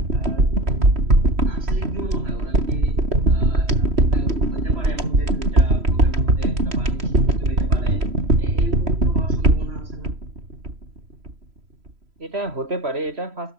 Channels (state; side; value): late; left; 3.0 ms